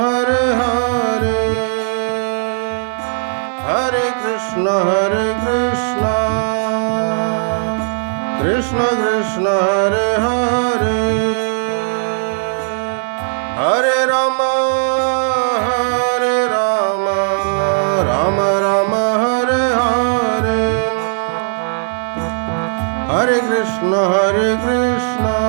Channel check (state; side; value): silent; left; digital silence